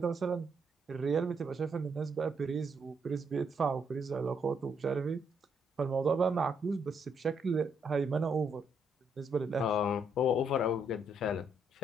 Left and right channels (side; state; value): both; normal; correlation 0.74